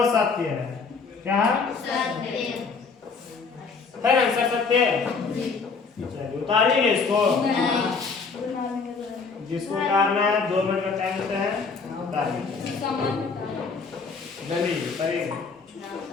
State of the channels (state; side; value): quieter; right; 4.9 dB